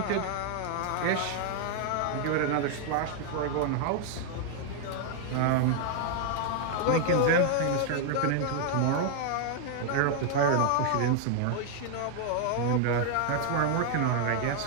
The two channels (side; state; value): both; different; correlation 0.00